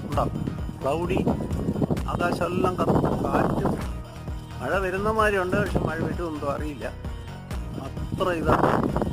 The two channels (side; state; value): both; identical; correlation 1.00